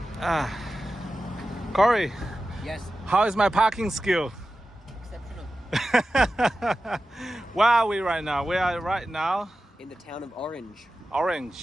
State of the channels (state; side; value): normal; both; correlation 0.93